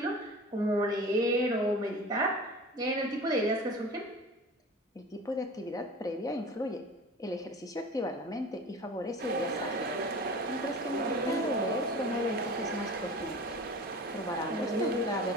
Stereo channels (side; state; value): both; normal; correlation 0.38